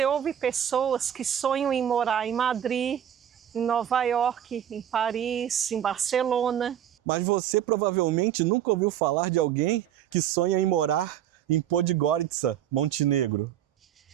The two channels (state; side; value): quieter; left; 10.3 dB